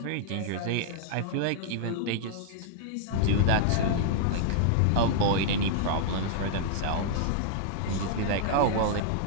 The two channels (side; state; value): both; different; correlation -0.01